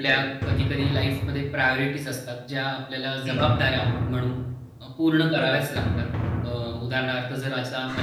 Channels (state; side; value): identical; both; correlation 1.00